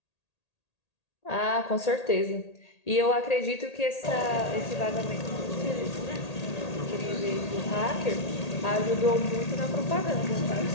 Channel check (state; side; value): late; right; 1.8 ms